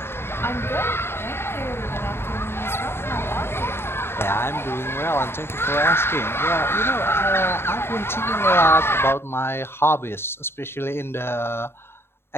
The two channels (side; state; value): right; late; 0.11 ms